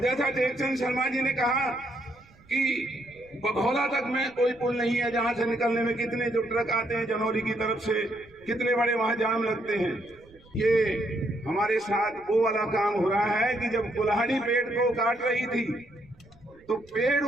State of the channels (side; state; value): right; noise; rumble, 28 dB below the sound